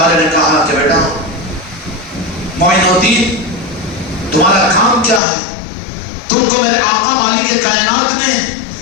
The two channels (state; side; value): drops out; right; at 5.2 s